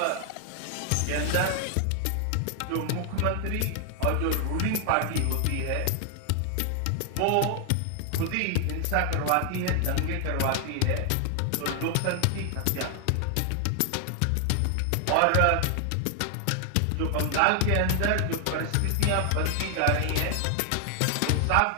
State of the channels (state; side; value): different; both; correlation 0.00